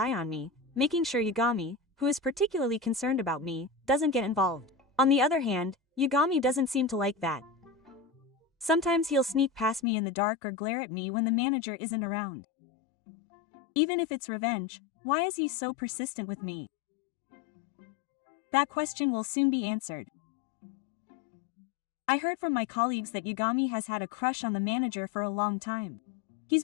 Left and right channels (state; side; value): drops out; right; at 9.8 s